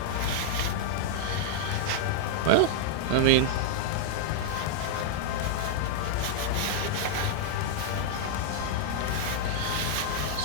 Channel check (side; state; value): both; different; correlation -0.01